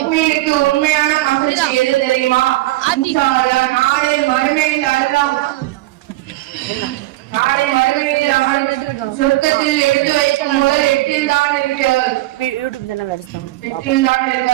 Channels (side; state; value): left; quieter; 18.2 dB